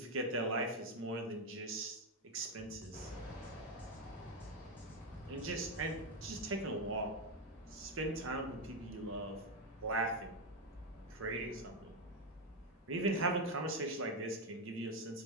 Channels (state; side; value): normal; both; correlation 0.06